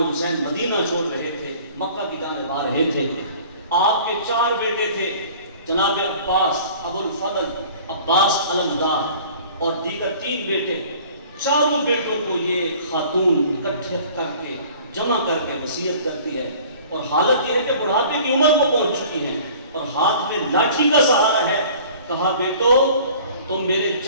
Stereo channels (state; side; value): inverted; both; correlation -0.48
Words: حسین مدینہ چھوڑ رہے تھے، مکہ کی جانب آ رہے تھے، آپ کے 4 بیٹے تھے، جناب عباس، ابو الفضل، عباس علمدار اور دیگر 3 بیٹے۔ چاروں بیٹوں کو یہ خاتون اکٹھے کر کے جمع کر کے وصیت کرتی ہے، اور حالت یہ ہے کہ بڑھاپے کی عمر کو پہنچ چکی ہیں اور ہاتھ میں لاٹھی کا سہارا ہے۔ کہا بیٹو تم میرے